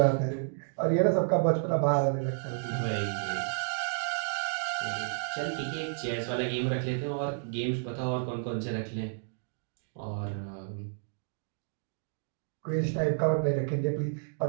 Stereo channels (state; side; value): silent; left; digital silence